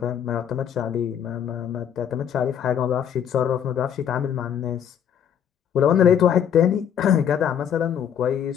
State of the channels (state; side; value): quieter; right; 8.8 dB